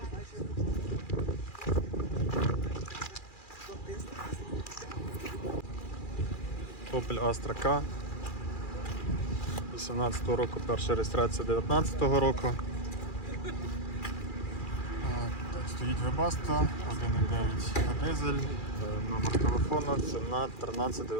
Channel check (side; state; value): right; late; 2.4 ms